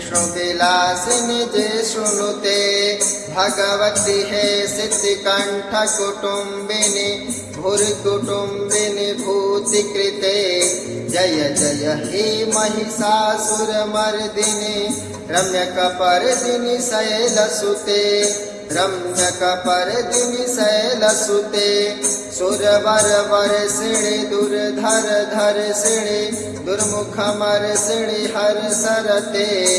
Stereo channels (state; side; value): identical; both; correlation 1.00